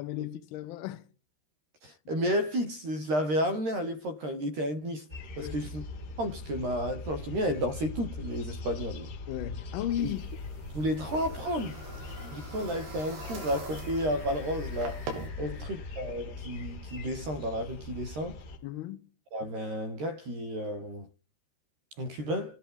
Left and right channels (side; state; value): left; late; 13 ms